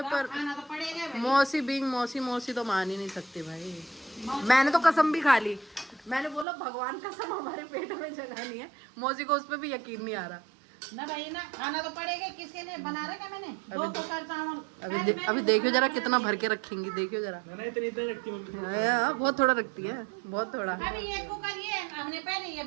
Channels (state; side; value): drops out; left; at 6.5 s